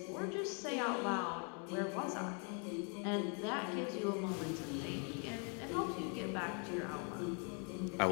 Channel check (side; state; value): right; quieter; 38.3 dB